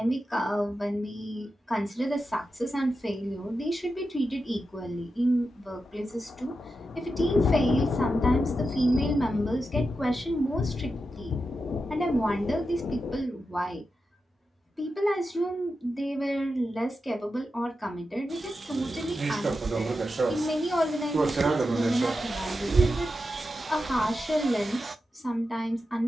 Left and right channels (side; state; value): both; normal; correlation 0.89